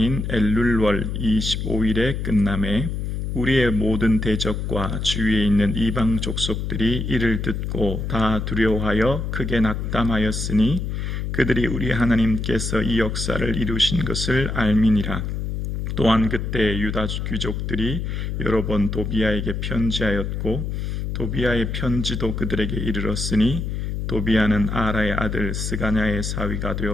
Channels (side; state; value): left; noise; hum, 3 dB below the sound